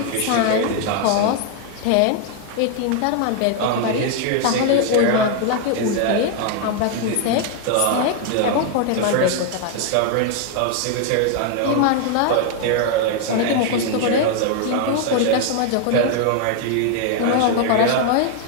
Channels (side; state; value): both; different; correlation 0.00